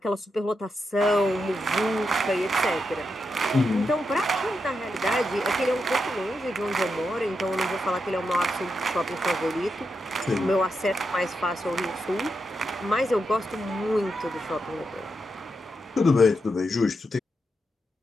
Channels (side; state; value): both; normal; correlation 0.85